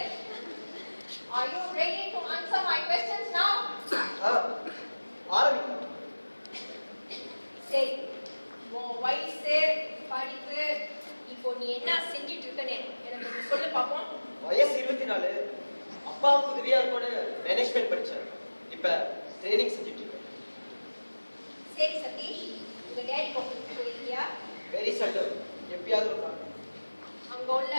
Are you ready to answer my questions now? ஆரம்பிக்கலாம். சரி, உன் வயசு, படிப்பு, இப்போ நீ என்ன செஞ்சிட்டு இருக்கன்னு எனக்கு கொஞ்சம் சொல்லு பாப்போம். வயசு 24. அப்பாவுக்கு உதவியா இருக்கோன்னு மேனேஜ்மெண்ட் படிச்சேன். இப்ப ட்ரைனிங் செஞ்சுட்டு இருக்கேன். சரி சதீஷ், உங்க டேடி ஆஃபீஸ்க்கு போயிருக்கியா? வெரி சல்டம். எப்பயாவது ஒரு நாள். அங்க உள்ள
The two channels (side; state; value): both; inverted; correlation -1.00